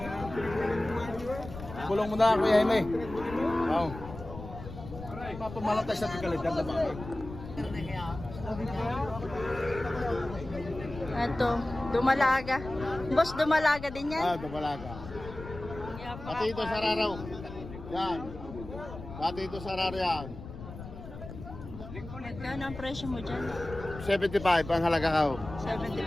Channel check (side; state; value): left; noise; rumble, 12 dB below the sound